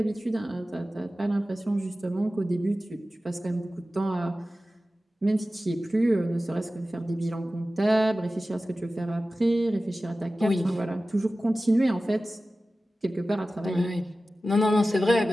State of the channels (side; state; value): both; normal; correlation 0.95